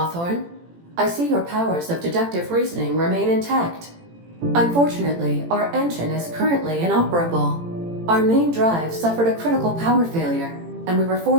I see your powers of deductive reasoning remain intact. Unfortunately, our engine is currently inoperable. Our main drive suffered a critical power failure, and we were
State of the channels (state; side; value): late; left; 18 ms